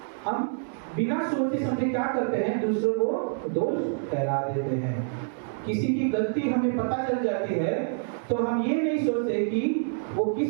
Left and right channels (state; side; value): silent; left; digital silence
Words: हम बिना सोचे समझे क्या करते हैं, दूसरों को दोष ठहरा देते हैं। किसी की गलती हमें पता चल जाती है तो हम ये नहीं सोचते कि वो